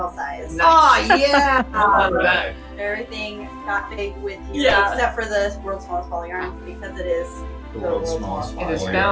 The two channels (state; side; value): identical; both; correlation 1.00